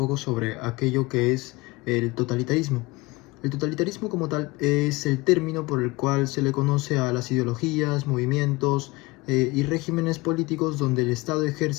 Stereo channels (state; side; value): quieter; right; 22.8 dB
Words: sobre aquello que es el totalitarismo. El totalitarismo como tal es el término por el cual se le conoce a las ideologías, movimientos y regímenes políticos donde el Estado